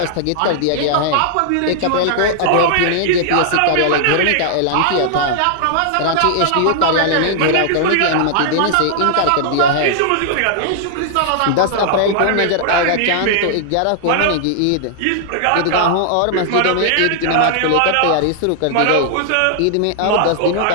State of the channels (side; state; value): both; different; correlation -0.01